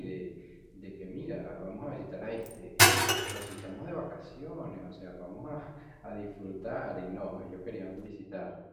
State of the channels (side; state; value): both; identical; correlation 1.00